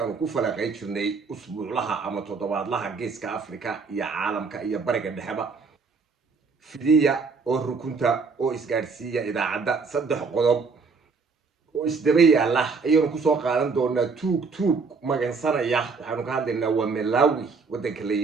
ku falaqay jirnay usbuuclaha ama toddobaadlaha geeska Afrika iyo caalamka iyo bariga dhexeba fidiya oo rukunta oo isgaarsiiya idaacadda saddex qodob oo isdaba yaala ayaynu ku soo qaadan doonaa tuug magansanaya waxaanu ka hadlaynaa waa Malawi wadanka la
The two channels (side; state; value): left; quieter; 4.7 dB